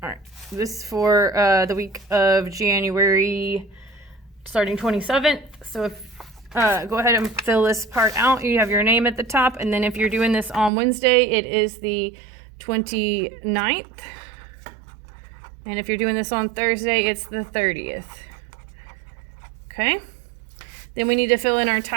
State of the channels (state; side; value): drops out; left; at 10.7 s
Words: All right, this is for the week of January starting 27th. So if go ahead and fill this part out. You have your name at the top, and then if you're doing this on Wednesday, it is the 29th. And if you're doing this on Thursday, it's the 30th. Okay? Then we need to fill in our